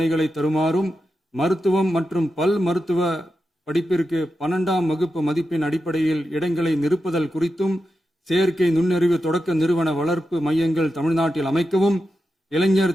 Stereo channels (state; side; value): normal; both; correlation 0.89